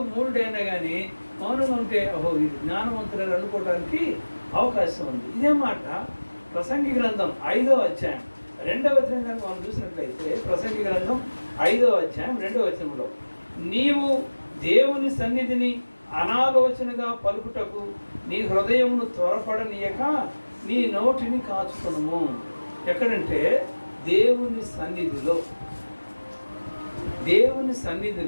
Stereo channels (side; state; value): both; inverted; correlation -1.00